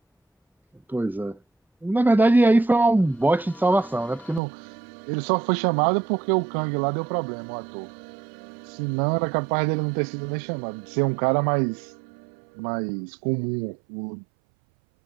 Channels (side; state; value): left; drops out; at 4.4 s